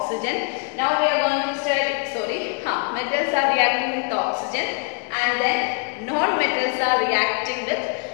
Now we are going to study, metals are reacting with oxygen and then non-metals are reacting with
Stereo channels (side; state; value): right; quieter; 36.8 dB